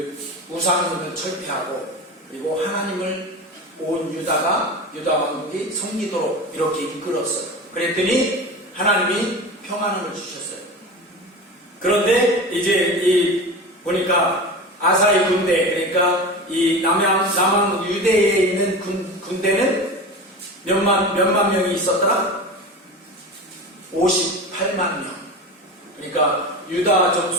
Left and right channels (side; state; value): both; normal; correlation 0.29